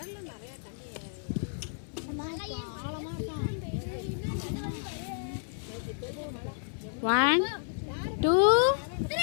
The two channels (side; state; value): right; silent; digital silence